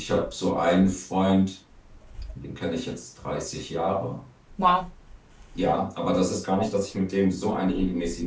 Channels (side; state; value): both; identical; correlation 1.00